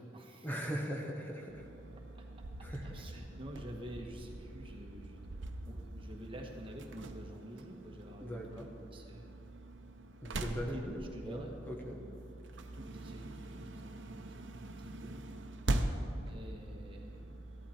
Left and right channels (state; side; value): normal; both; correlation 0.82